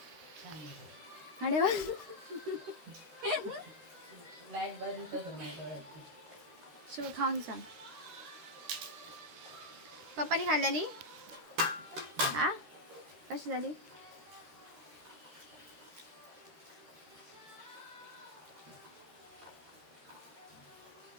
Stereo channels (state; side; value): late; left; 13 ms